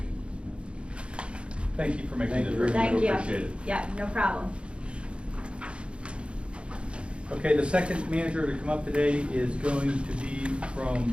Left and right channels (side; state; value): left; late; 0.057 ms